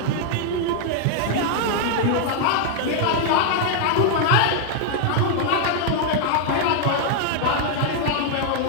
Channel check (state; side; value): different; both; correlation 0.00